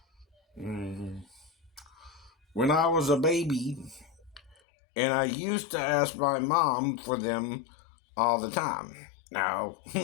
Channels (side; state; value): right; drops out; at 4.5 s